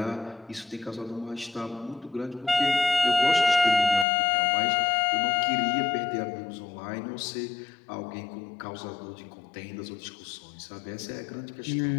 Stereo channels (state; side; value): drops out; right; at 4.0 s